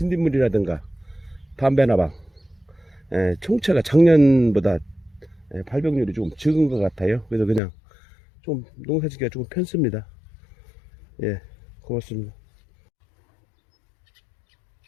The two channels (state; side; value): drops out; right; at 7.6 s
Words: 담배나방 총체가 작년보다 발병률이 조금 적은 것 같아요. 그래서 그냥 좀 농사짓기가 조금 편습니다. 예, 고맙습니다.